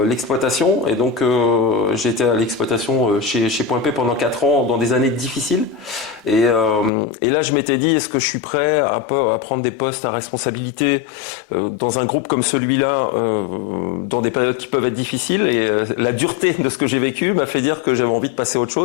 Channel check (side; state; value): right; drops out; at 6.9 s